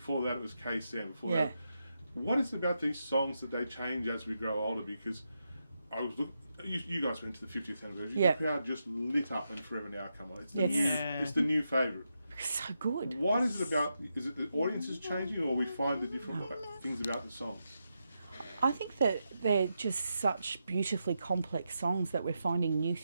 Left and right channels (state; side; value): inverted; both; correlation -0.85